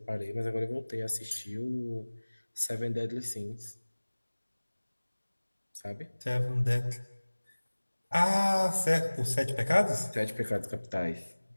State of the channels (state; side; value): inverted; both; correlation -1.00